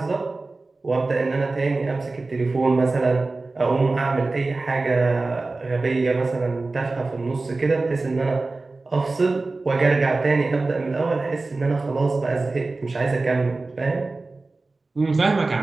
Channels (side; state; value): left; quieter; 3.4 dB